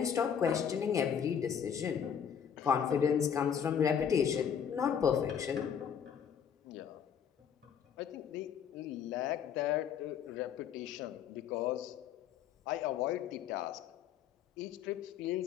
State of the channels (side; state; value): right; quieter; 8.1 dB